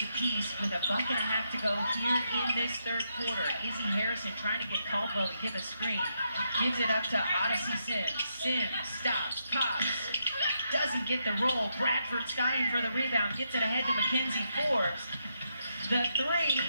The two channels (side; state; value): both; inverted; correlation -0.80